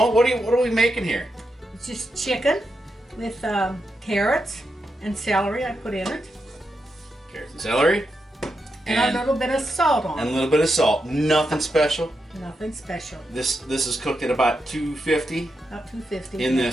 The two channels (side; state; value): both; normal; correlation 0.85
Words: what are we making here? It's just chicken with carrots and celery I put in it. Carrots and celery. And a little bit of salt on And it. a little bit of salt. Nothing special. Nothing special. This is cooked at about 250 About 250. in